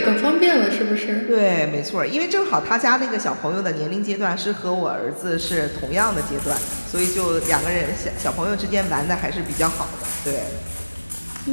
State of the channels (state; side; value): inverted; both; correlation -1.00